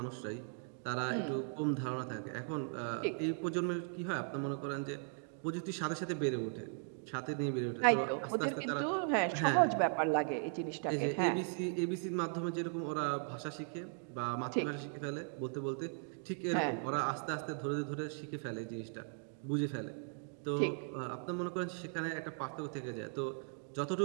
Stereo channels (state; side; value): silent; left; 52 dB below the other